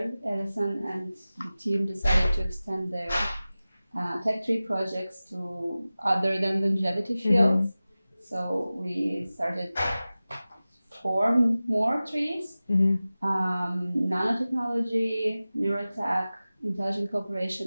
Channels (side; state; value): both; inverted; correlation -0.97